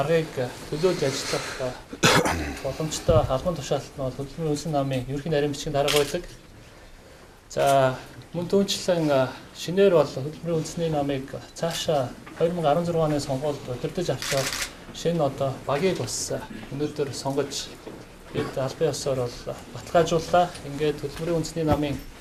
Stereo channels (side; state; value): both; identical; correlation 1.00